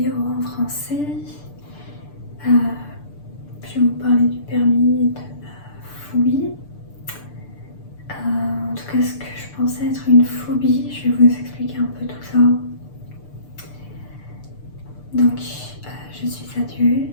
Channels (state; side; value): late; right; 6.8 ms